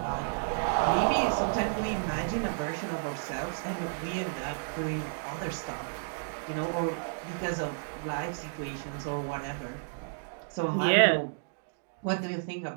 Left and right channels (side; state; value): left; silent; digital silence